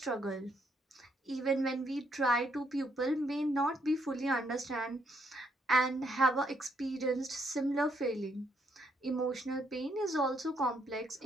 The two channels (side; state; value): both; normal; correlation 0.74